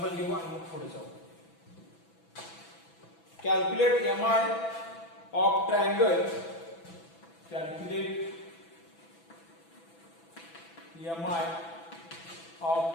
घेऊ आणि मग पुढे जाऊ. Calculate MI of triangle. Calculate MI of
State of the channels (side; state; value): right; late; 6.0 ms